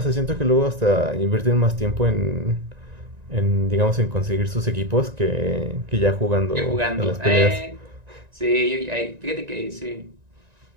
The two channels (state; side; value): late; left; 1.9 ms